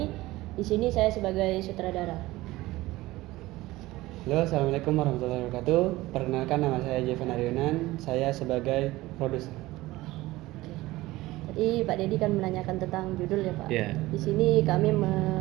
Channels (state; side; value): quieter; left; 18.5 dB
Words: Di sini saya sebagai sutradara. Halo, assalamualaikum warahmatullahi wabarakatuh. Perkenalkan, nama saya Jevan Aryonan. Saya sebagai produser. Tadi Pak Dedi kan menanyakan tentang judul ya Pak. Yeah. Di sini kami